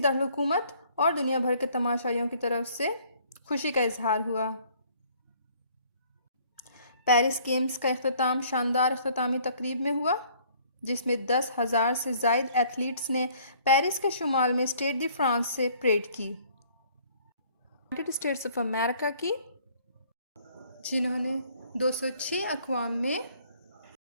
और दुनिया भर के तमाशाइयों की तरफ से खुशी का इजहार हुआ। पेरिस गेम्स का इख्तिताम शानदार इख्तितामी तकरीब में हुआ, जिसमें 10,000 से ज़ायद एथलीट्स ने पेरिस के शुमाल में स्टेड दी फ्रांस से परेड की, यूनाइटेड स्टेट्स ऑफ अमेरिका की, जिन्होंने 206 अक़वाम में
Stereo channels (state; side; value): inverted; both; correlation -0.59